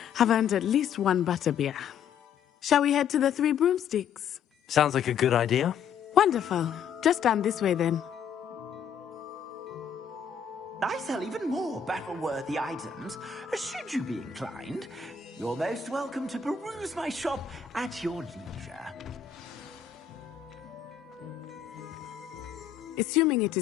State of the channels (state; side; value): quieter; right; 7.6 dB